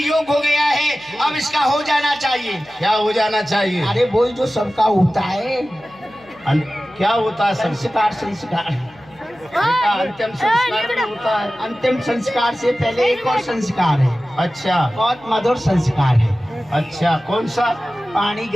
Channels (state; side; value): noise; left; hum, 27 dB below the sound